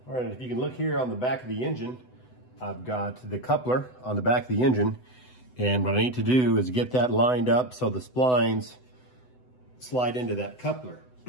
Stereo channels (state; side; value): late; right; 8.0 ms